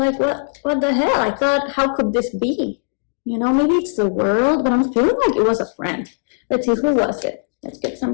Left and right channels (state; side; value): silent; right; digital silence